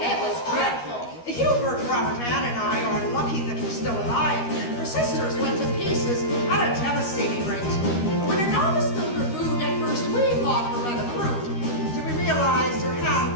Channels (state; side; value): late; right; 13 ms